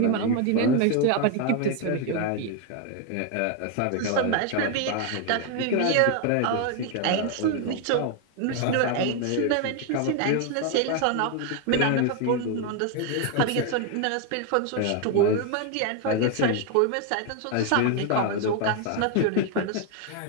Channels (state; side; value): different; both; correlation 0.01